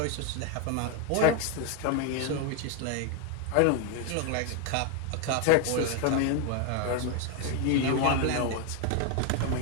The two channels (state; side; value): different; both; correlation 0.01